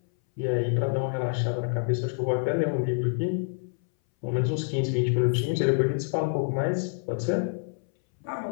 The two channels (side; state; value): right; silent; 60 dB below the other